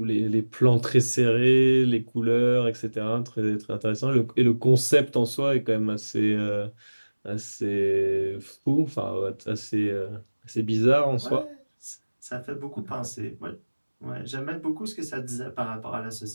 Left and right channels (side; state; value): both; inverted; correlation -1.00